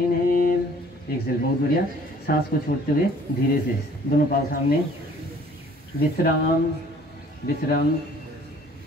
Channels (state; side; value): normal; both; correlation 0.55